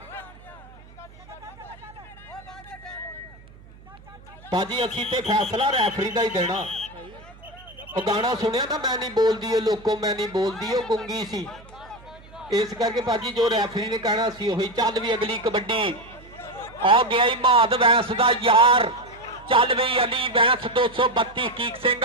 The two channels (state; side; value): noise; right; hum, 22 dB below the sound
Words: भाजी असी ते फैसला रैफरी का ही देना। वो गाना सुनिया ना, मैं नहीं बोलती है लोगों, मैं नहीं बोलती, वो गुंगी सी, इस करके भाजी जो रैफरी ने कहना सी वही। चल भी अगली कबड्डी, आ गया ही महाद वैंस दा यार। चल भी अली वैंस 232 हकीक सिंह